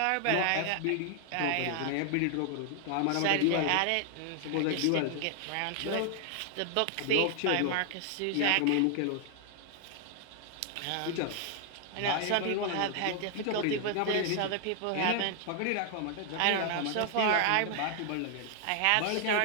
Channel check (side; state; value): both; different; correlation 0.00